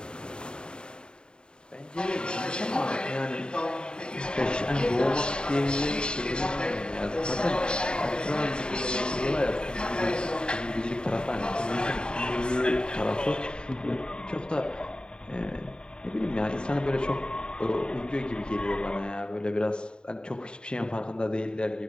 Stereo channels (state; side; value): late; right; 0.049 ms